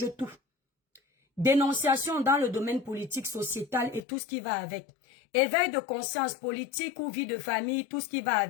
tout. Dénonciation dans le domaine politique, sociétal et tout ce qui va avec. Éveil de conscience politique ou vie de famille, tout ce qui va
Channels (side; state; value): right; drops out; at 4.0 s